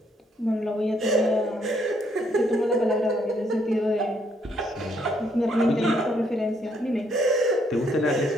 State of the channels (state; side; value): normal; both; correlation 0.71